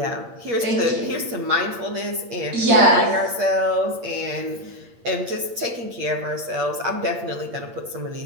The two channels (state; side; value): late; left; 8.6 ms